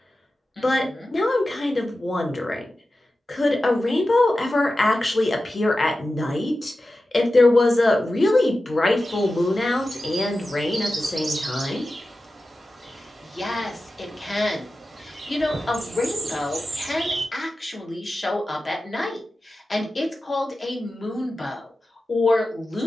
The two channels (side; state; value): both; normal; correlation 0.94